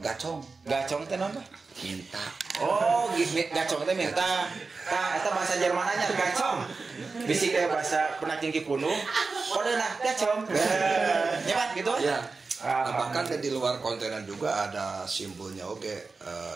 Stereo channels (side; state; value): left; quieter; 4.2 dB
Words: gacong. Gacong teh naon, Pak? Minta. Oh, gacong teh minta. Tah eta bahasa Jermananya gacong. Bisi kayak bahasa penaking Kipunuk. Kode nah gacong. Nyaman gitu? Iya. Bahkan di luar kontenan juga ada simbolnya